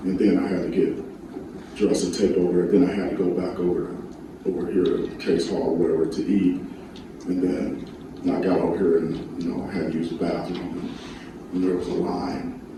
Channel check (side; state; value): both; identical; correlation 1.00